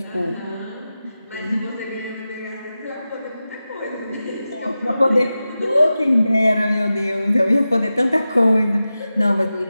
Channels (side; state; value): both; inverted; correlation -0.93